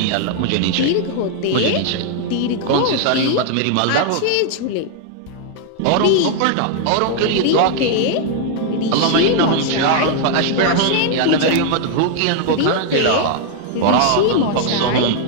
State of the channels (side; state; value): both; different; correlation 0.00